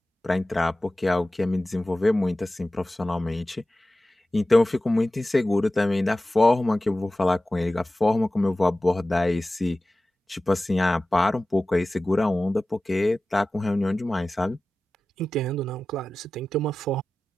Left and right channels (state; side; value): normal; both; correlation 0.95